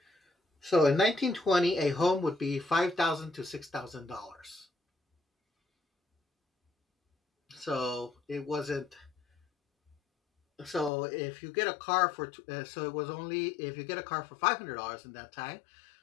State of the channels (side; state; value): right; drops out; at 10.9 s